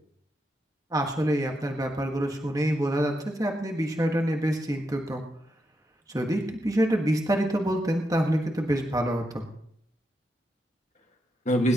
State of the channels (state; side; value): normal; both; correlation 0.84